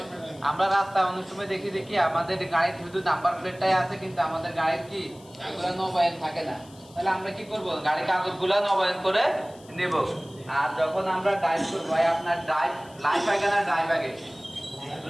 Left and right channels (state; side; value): noise; left; hiss, 25 dB below the sound